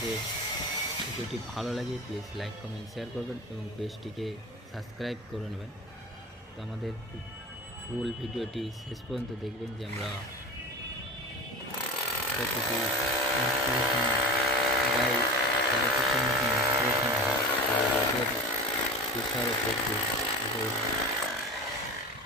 ভিডিওটি ভালো লাগে প্লিজ লাইক কমেন্ট শেয়ার করবেন এবং পেজটিকে সাবস্ক্রাইব করে নেবেন। তো আমাদের ফুল ভিডিওটি শেষ পর্যন্ত দেখবেন যে আমরা কতটি ইনস্টলেশন প্রায় 13 ফুটের মতো ইনস্টলেশন হয়। রোদের প্রেশারও প্রচুর,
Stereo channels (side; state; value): both; normal; correlation 0.32